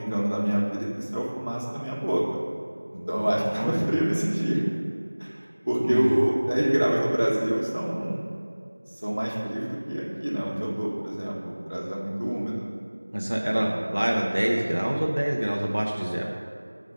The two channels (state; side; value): inverted; both; correlation -1.00